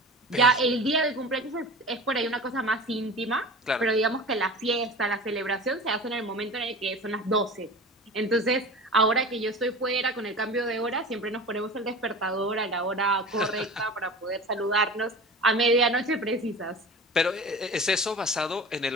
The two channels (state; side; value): normal; both; correlation 0.35